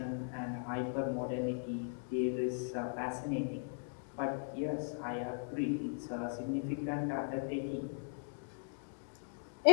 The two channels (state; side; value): silent; right; digital silence